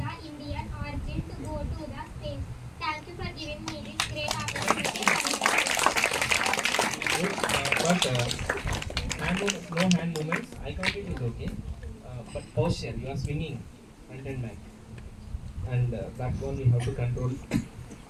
Indian origin to go to the space. Thank you for giving me this great opportunity. but hand movements, no hand movements. Eye contact is okay, but posture, you are swinging front and back, and back one we have to control.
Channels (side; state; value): both; identical; correlation 1.00